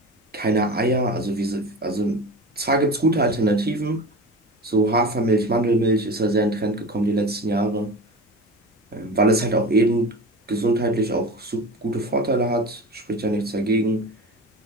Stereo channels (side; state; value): both; normal; correlation 0.31